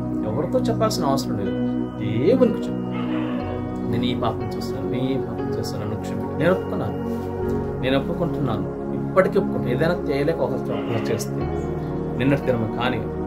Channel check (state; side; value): identical; both; correlation 1.00